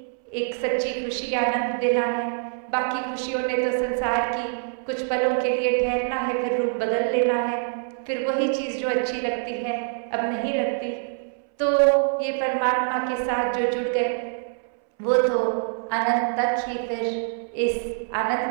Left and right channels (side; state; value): left; silent; 62 dB below the other